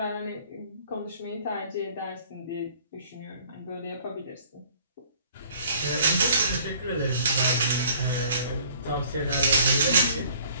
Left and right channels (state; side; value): inverted; both; correlation -0.55